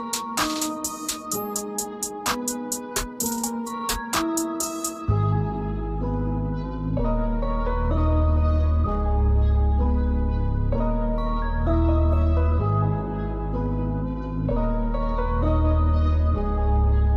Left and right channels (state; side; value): identical; both; correlation 1.00